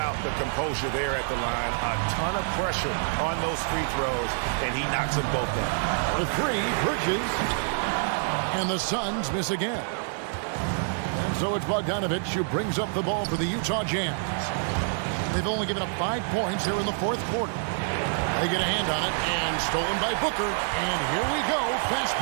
the composure there at the line? A ton of pressure on those free throws, and he knocks them both down. The three, Bridges. And the Suns miss again. And so it's Bogdanovich who brings up the ball for the Utah Jazz. They've only given up 5 points here in the fourth quarter. They get a hand on it, and stolen by Booker. And here we go. Fast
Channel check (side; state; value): left; silent; digital silence